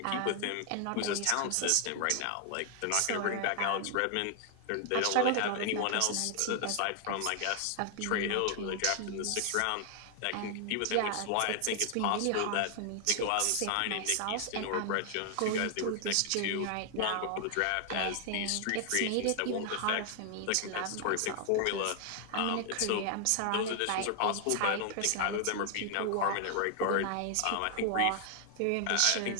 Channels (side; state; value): both; different; correlation 0.00